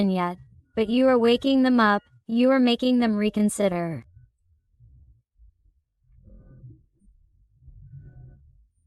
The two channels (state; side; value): identical; both; correlation 1.00